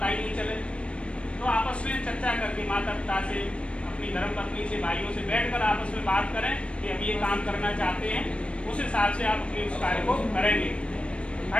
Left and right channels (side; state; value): right; late; 0.059 ms